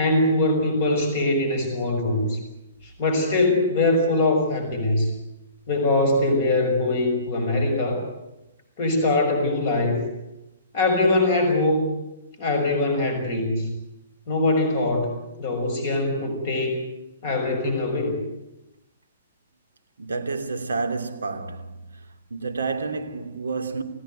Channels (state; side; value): inverted; both; correlation -0.49